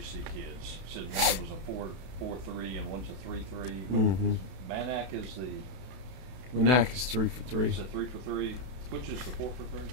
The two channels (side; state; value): left; late; 32 ms